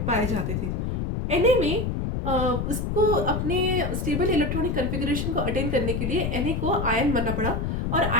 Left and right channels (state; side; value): noise; left; rumble, 1 dB below the sound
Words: पाए जाते थे। Na में उसको अपने स्टेबल इलेक्ट्रॉनिक कन्फिगरेशन को अटेन करने के लिए Na को आयन बनना पड़ा, और